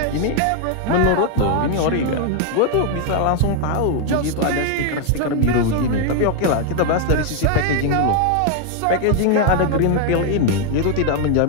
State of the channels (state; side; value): different; both; correlation 0.00